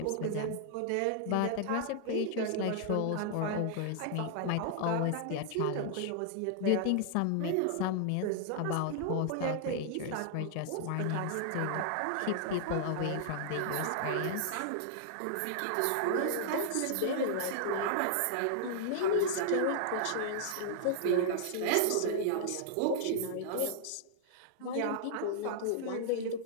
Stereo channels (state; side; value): different; both; correlation -0.01